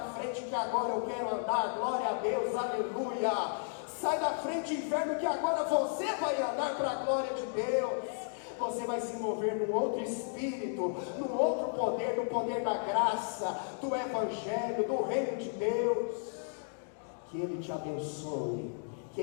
frente que agora eu quero andar, glória a Deus, aleluia. Sai da frente, inferno, que agora você vai andar para a glória de Deus. Você vai se mover num outro espírito, num outro poder, no poder da graça, do evangelho, do reino de Deus. Que Ele te abençoe, que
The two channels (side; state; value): right; silent; digital silence